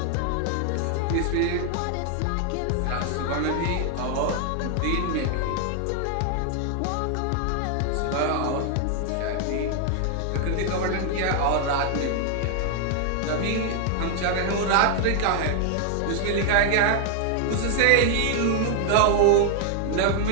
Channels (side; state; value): both; different; correlation 0.00